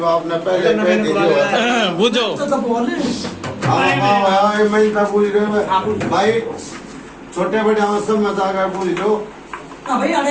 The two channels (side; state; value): both; identical; correlation 1.00